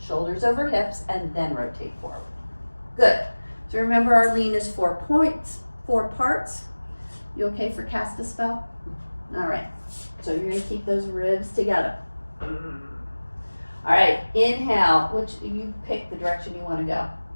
shoulders over hips, and then rotate forward. Good. So remember, our lean is 4 points, 4 parts. You okay for cast a spell? All right. So you're gonna keep those ribs together. All right, inhale, which you pick the direction you wanna go.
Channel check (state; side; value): inverted; both; correlation -1.00